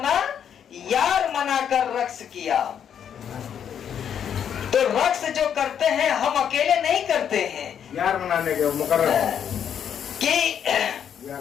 यार मनाकर रक्स किया। तो रक्स जो करते हैं हम अकेले नहीं करते हैं, यार मनाने के मुकर्रर कि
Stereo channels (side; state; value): right; quieter; 8.6 dB